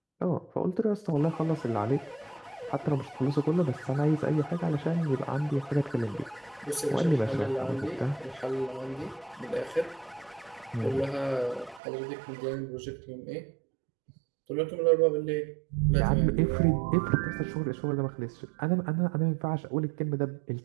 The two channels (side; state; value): left; drops out; at 11.8 s